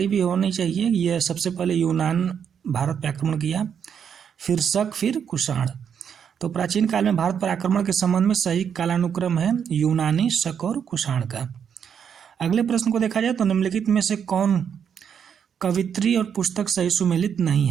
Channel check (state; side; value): quieter; left; 7.7 dB